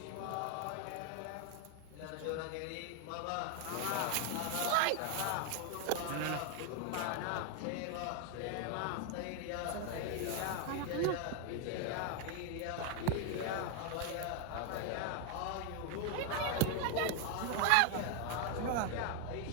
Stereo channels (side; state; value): both; different; correlation 0.01